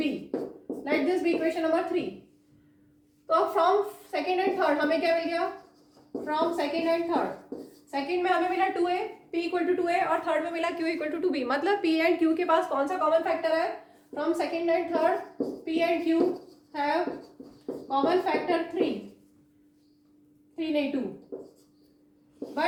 Late this be equation number 3. तो फ्रॉम सेकेंड एंड थर्ड हमें क्या मिल गया? From second and third, second में हमें मिला 2a, p equal to 2a, और थर्ड में मिला q इक्वल टू 2b. मतलब p एंड q के पास कौन सा कॉमन फैक्टर है? From second and third p and q have common factor 3 नहीं 2,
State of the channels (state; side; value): identical; both; correlation 1.00